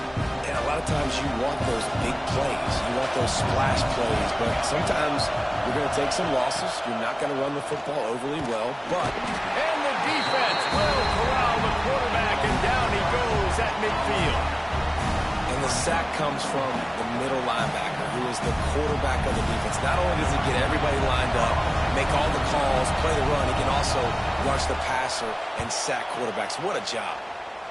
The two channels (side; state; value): both; identical; correlation 1.00